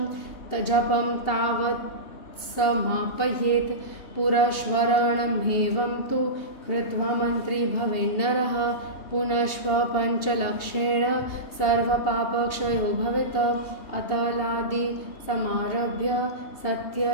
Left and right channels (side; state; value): right; late; 2.8 ms